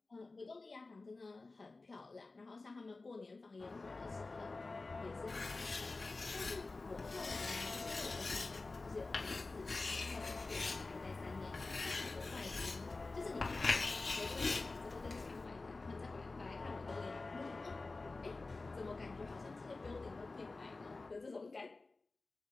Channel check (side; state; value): right; quieter; 3.5 dB